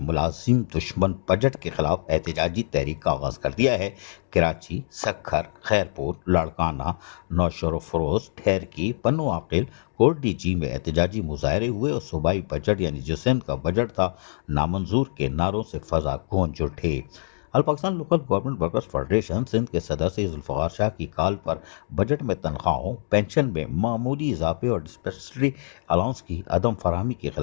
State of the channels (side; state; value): right; silent; digital silence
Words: دشمن بجٹ کے خلاف احتجاجی تحریک کا آغاز کر دیا ہے۔ کراچی، سکھر، خیرپور، لاڑکانہ، نوشہر و فروز، ٹھیرکی، پنو عاقل، کوٹ ڈی جی میں احتجاجی مظاہرے ہوئے اور صوبائی بجٹ یعنی جو سندھ کا بجٹ تھا نامنظور کے نعروں سے فضا گونج اٹھے۔ All Pakistan local government workers federation Sindh کے صدر سید ذوالفقار شاہ کی کال پر بجٹ میں تنخواہوں، پینشن میں معمولی اضافے اور ڈسپینسری الاؤنس کی عدم فراہمی کے